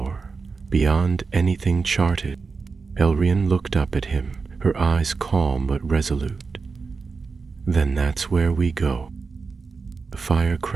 beyond anything charted." Elrian looked up at him, her eyes calm but resolute. "Then that's where we go." The fire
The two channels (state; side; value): quieter; left; 4.7 dB